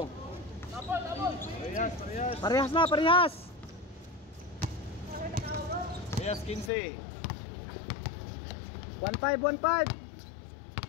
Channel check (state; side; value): drops out; right; at 6.7 s